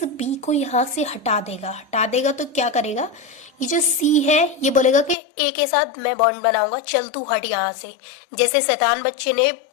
बी को यहाँ से हटा देगा। तो क्या करेगा, ये जो सी है ये बोलेगा कि ए के साथ मैं बॉन्ड बनाऊंगा, चल तू हट यहाँ से। जैसे शैतान बच्चे ने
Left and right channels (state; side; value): drops out; right; at 5.2 s